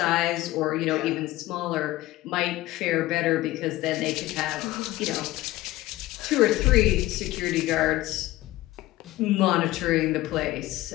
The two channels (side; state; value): right; quieter; 17.0 dB